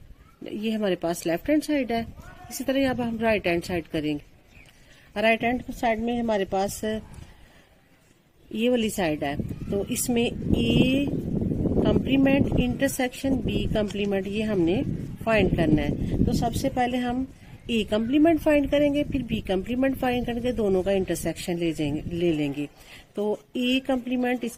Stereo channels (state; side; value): identical; both; correlation 1.00